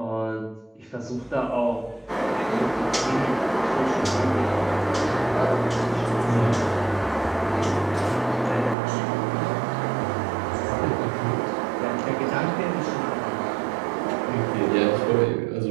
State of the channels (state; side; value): drops out; left; at 8.8 s